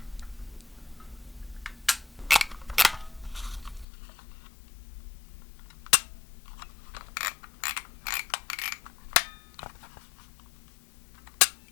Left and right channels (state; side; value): drops out; right; at 3.9 s